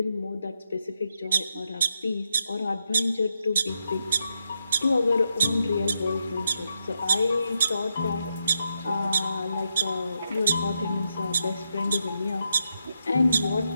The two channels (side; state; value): both; inverted; correlation -0.82